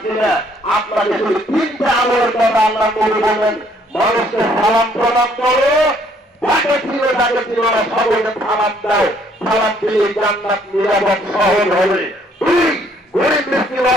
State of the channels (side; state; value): both; normal; correlation 0.64